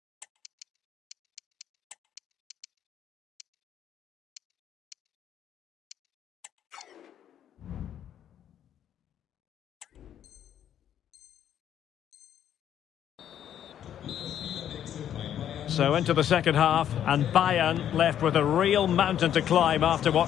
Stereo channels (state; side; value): quieter; right; 10.1 dB